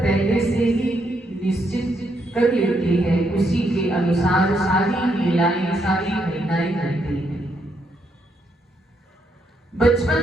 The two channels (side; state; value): both; normal; correlation 0.76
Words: से ही निश्चित कर लेती है, उसी के अनुसार सारी लीलाएं, सारी घटनाएं घटती हैं।